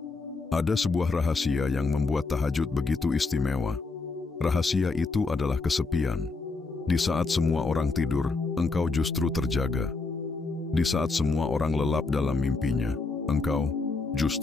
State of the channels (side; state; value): right; quieter; 3.9 dB